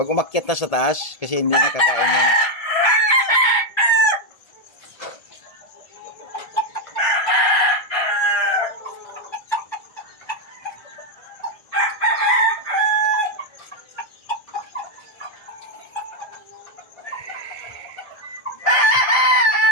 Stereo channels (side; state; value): right; late; 1.8 ms